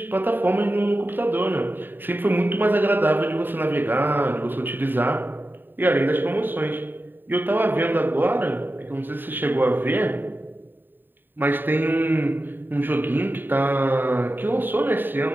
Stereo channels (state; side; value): late; left; 0.093 ms